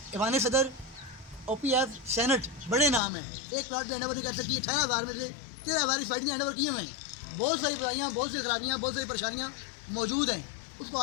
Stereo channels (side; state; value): right; drops out; at 3.0 s